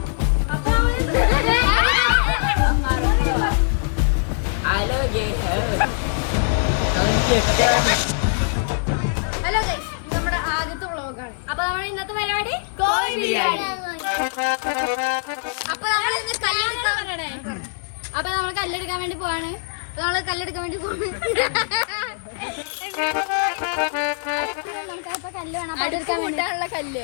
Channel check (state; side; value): silent; right; digital silence